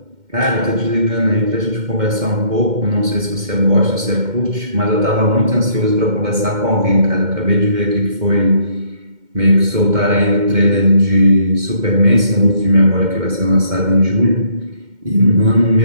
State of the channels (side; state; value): left; late; 2.1 ms